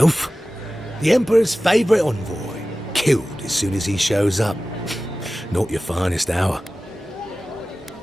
The Emperor's favourite envoy, killed as soon as he shows up. Not your finest hour.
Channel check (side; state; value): both; normal; correlation 0.96